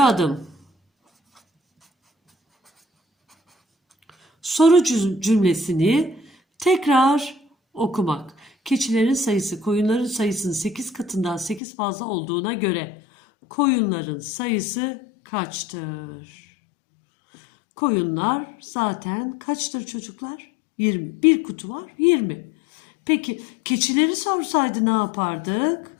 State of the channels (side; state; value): right; drops out; at 11.6 s